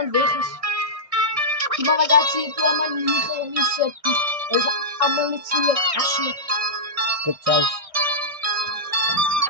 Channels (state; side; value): late; left; 1.6 ms